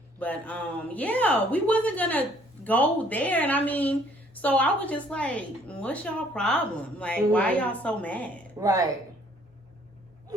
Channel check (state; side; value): normal; both; correlation 0.61